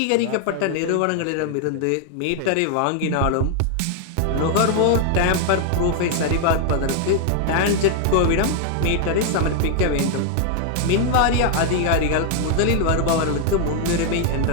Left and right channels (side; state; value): both; different; correlation 0.00